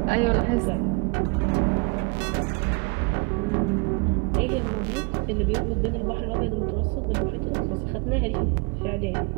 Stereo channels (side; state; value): left; quieter; 30.8 dB